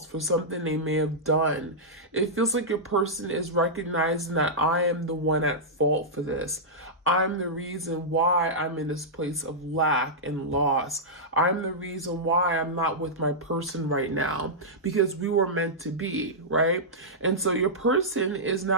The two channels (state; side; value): normal; both; correlation -0.11